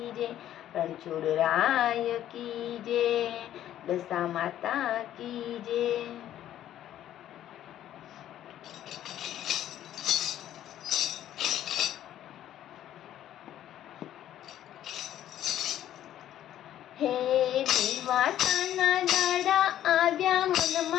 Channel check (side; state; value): right; quieter; 11.9 dB